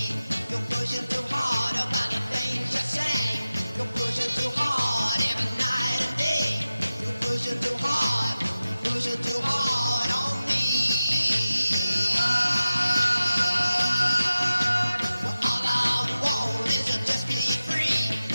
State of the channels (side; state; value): both; inverted; correlation -0.94